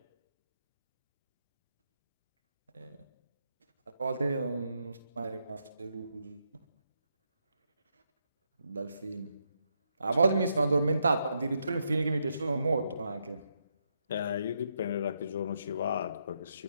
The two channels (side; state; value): both; inverted; correlation -0.79